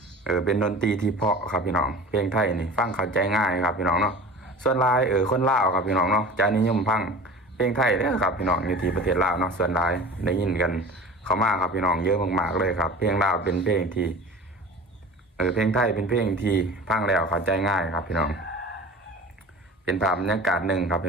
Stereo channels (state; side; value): normal; both; correlation 0.37